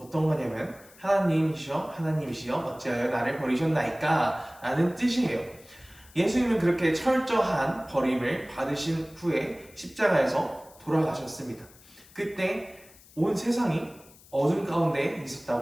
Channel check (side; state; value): left; noise; hiss, 24 dB below the sound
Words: 거냐면 하나님이시여 하나님이시여 어찌하여 나를 버리셨나이까 라는 뜻이에요. 예수님은 그렇게 철저한 버림을 받으신 후에 십자가에서 돌아가셨습니다. 그때 온 세상이 어둠 가운데